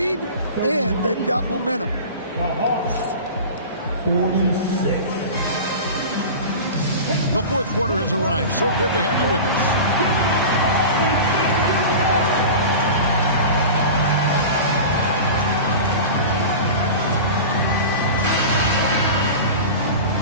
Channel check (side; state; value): both; inverted; correlation -0.32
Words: and they've got momentum. The Hawks, 46. The fourth quarter has arrived. So good to have you with us.